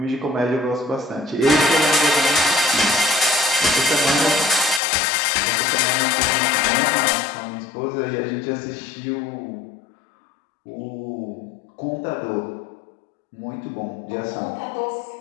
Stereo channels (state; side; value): drops out; right; at 4.8 s